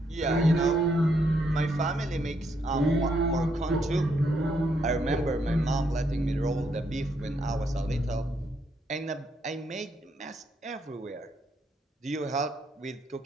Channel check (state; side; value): normal; both; correlation 0.75